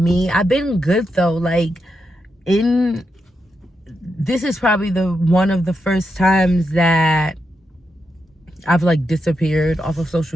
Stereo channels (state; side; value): normal; both; correlation 0.85